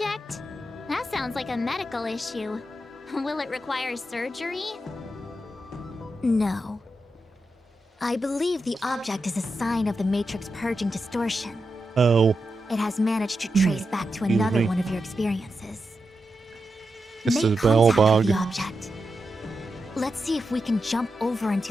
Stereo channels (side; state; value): both; normal; correlation 0.88